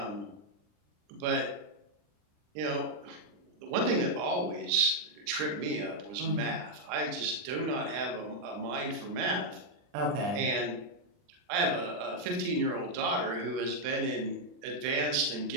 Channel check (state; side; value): late; left; 39 ms